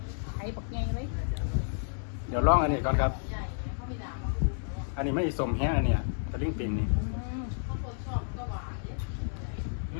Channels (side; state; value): right; silent; 57 dB below the other